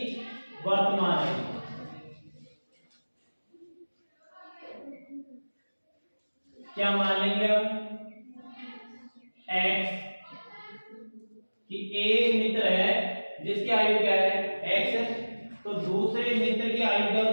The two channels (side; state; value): both; inverted; correlation -1.00